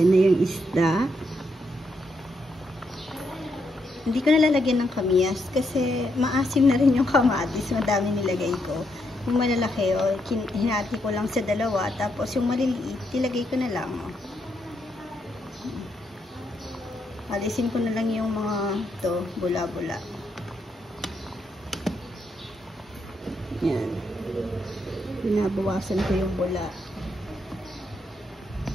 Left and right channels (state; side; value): normal; both; correlation 0.79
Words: na yung isda. Hindi ko nalalagyan ng kamyas kasi maasim na rin yung kamatis. Madami nilagay ko. Yung malalaki, hinati ko lang sa dalawa. Tapos yung maliliit, ilagay ko na lang. Alisin ko na lang yung mga bula-bula. Yan. Binabawasan ko yung bula.